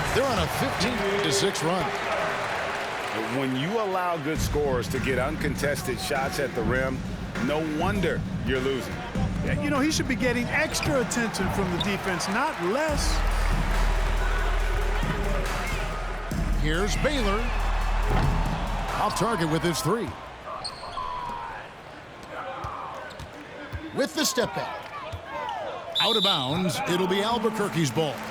They're on a 15-6 run. When you allow good scorers to get uncontested shots at the rim, no wonder you're losing. Yeah, you know, he should be getting extra attention from the defense, not less. Here's Baylor. Off target with his 3. With the step back. Out of bounds, it'll be Albuquerque's ball.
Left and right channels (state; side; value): identical; both; correlation 1.00